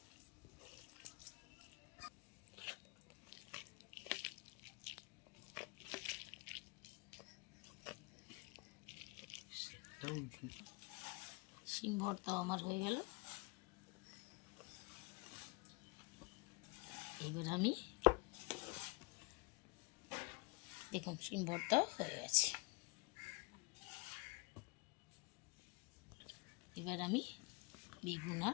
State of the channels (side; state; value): right; quieter; 28.3 dB